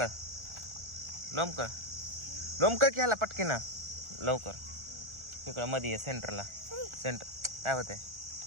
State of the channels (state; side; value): late; left; 1.4 ms